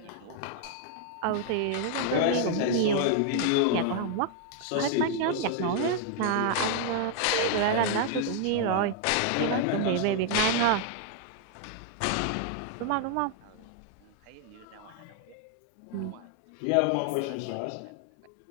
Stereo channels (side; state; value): both; different; correlation 0.00